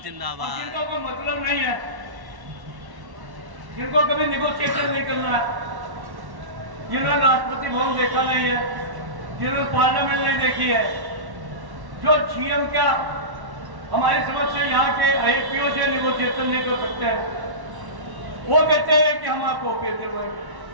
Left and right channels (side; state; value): left; late; 1.1 ms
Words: जिंदाबाद। जिनका कोई मतलब नहीं है, जिनको कभी निगोशिएशन नहीं करना है, जिन्होंने राष्ट्रपति भवन देखा नहीं है, जिन्होंने पार्लियामेंट नहीं देखी है, जो सीएम का हमारी समझ से यहाँ के आईपीओ से निगोशिएशन नहीं कर सकते हैं, वो कहते हैं कि हम आपको ओके दिलवाएंगे।